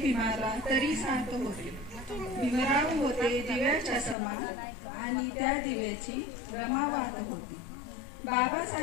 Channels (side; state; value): right; drops out; at 4.2 s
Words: भीमाला तरी साथ होती। भीमराव होते दिव्याच्या समान आणि त्या दिव्याची रमा वाहत होती।